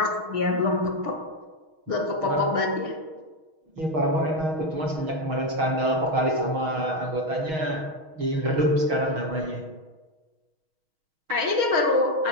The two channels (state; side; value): late; left; 6.3 ms